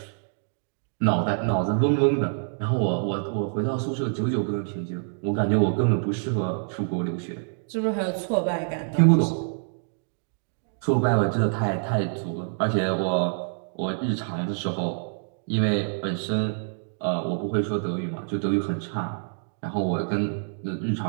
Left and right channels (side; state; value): left; silent; digital silence